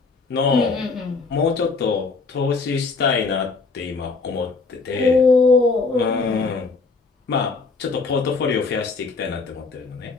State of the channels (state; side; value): quieter; right; 4.2 dB